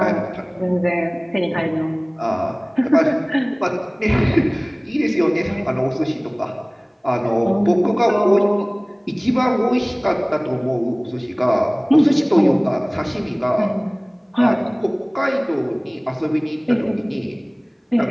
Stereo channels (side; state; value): both; identical; correlation 1.00